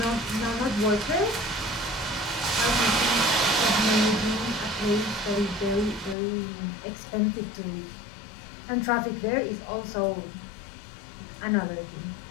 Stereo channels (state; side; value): drops out; right; at 6.2 s